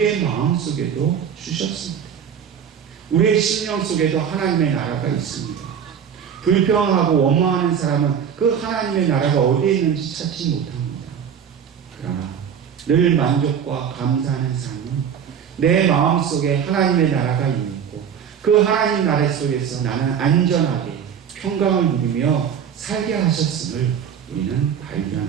마음속에도 주셨습니다. 우리의 심령 속에도 하나님의 나라가 있습니다. 불평하고 원망하는 사람은 그 하나님의 나라가 어디에 있는지 찾지 못합니다. 그러나 늘 만족과 감사하는 삶은 내 마음속에 하나님의 나라가 있고 그 하나님 나라 속에서 나는 안전하게 평강을 누리며 살게 하셨음을 우리는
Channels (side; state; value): left; quieter; 8.0 dB